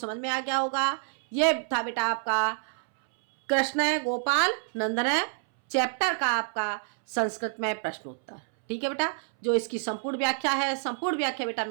में आ गया होगा। ये था बेटा आपका कृष्ण गोपाल नंदन चैप्टर का आपका संस्कृत में प्रश्नोत्तर। ठीक है बेटा, जो इसकी संपूर्ण व्याख्या है, संपूर्ण व्याख्या बेटा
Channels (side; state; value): left; silent; 59 dB below the other